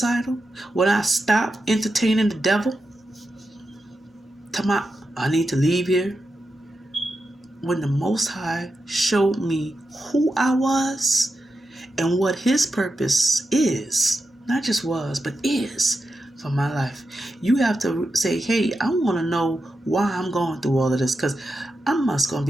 When I stopped entertaining the devil? I need to leave here. When the Most High showed me who I was and what his purpose is, not just was, but is for my life. You have to say, hey, I want to know why I'm going through all of this, because I must going to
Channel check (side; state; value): both; normal; correlation 0.89